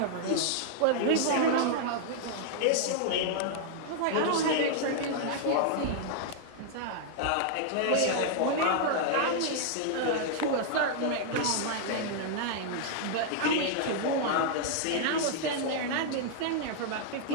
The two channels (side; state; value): both; different; correlation -0.01